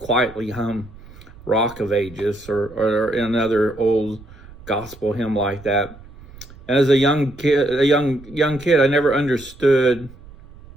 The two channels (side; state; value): right; noise; rumble, 20 dB below the sound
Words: hum Rock of Ages or another old gospel hymn like that. And as a young kid, I never understood